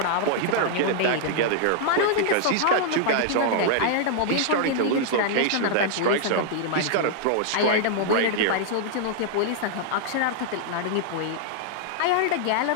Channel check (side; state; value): both; different; correlation -0.01